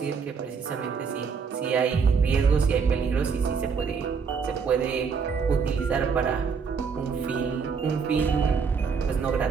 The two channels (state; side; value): quieter; left; 5.7 dB